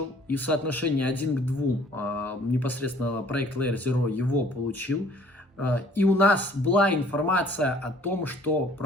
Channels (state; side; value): normal; both; correlation 0.56